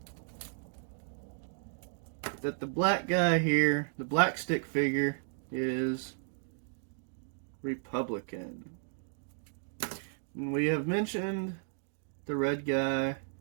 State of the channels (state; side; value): silent; left; digital silence